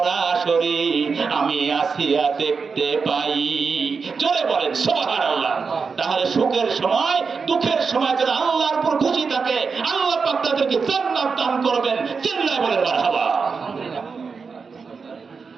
আমি আসিয়া দেখতে পাই। জোরে বলেন সুবহানাল্লাহ। তাহলে সুখের সময় দুঃখের সময় যারা আল্লাহর উপর খুশি থাকে, আল্লাহ পাক তাদেরকে জান্নাত দান করবেন। চিল্লায় বলেন মারহাবা।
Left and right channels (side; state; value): left; quieter; 5.1 dB